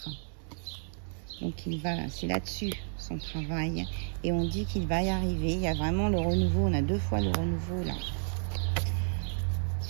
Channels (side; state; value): left; silent; 57 dB below the other